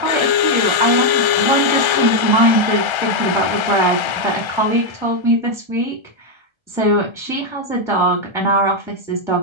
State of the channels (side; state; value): left; late; 1.3 ms